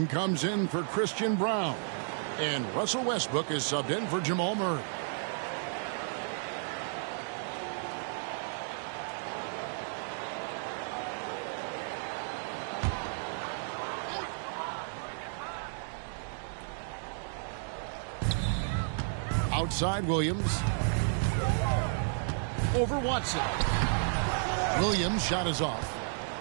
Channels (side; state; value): left; silent; 56 dB below the other